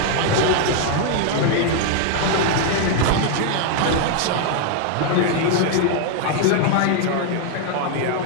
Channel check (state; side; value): different; both; correlation 0.00